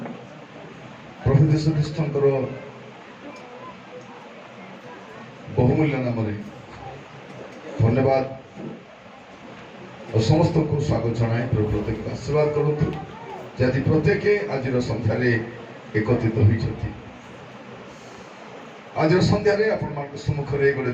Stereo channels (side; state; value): both; identical; correlation 1.00